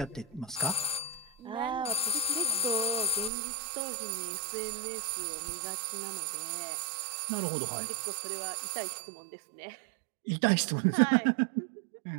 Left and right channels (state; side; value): drops out; left; at 3.3 s